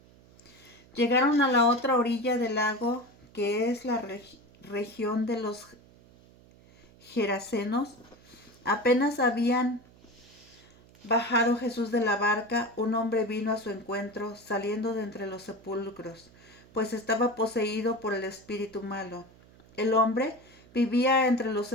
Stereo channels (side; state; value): right; noise; hum, 26 dB below the sound